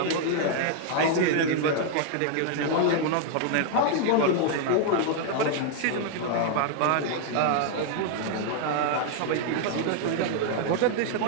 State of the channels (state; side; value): different; both; correlation 0.00